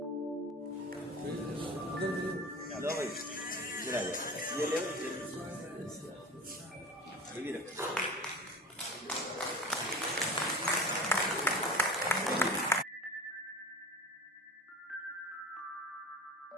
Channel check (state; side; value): normal; both; correlation 0.32